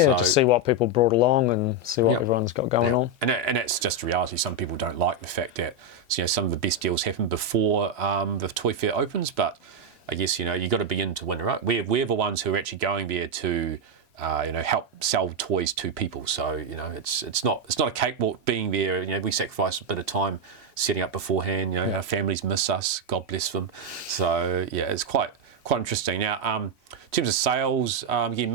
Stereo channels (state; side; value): late; left; 2.0 ms